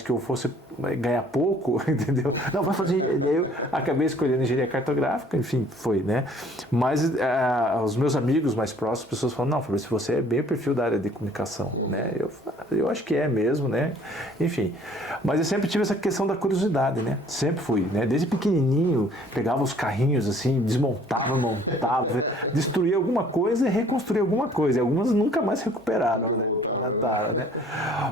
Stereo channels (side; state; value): both; normal; correlation 0.55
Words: que eu fosse ganhar pouco, entendeu? Não, vai fazer. Eu acabei escolhendo engenharia cartográfica, enfim, foi, né? Mas os meus amigos mais próximos, as pessoas falam, não, Fabrício, você é bem o perfil da área de comunicação, né? Eu acho que é mesmo, né? Enfim, mas eu sempre tive essa questão da curiosidade, né? Sempre fui, né? Desde pequenininho, pegava os carrinhos assim, desmontava, montava, destruía alguma coisa e reconstruía alguma coisa. E algumas nunca mais recuperaram, né? Né?